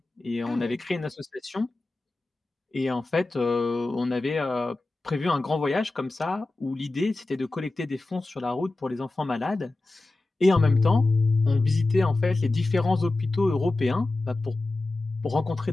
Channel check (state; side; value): quieter; right; 3.0 dB